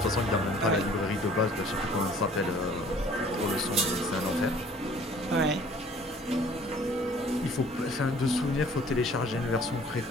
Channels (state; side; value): normal; both; correlation 0.53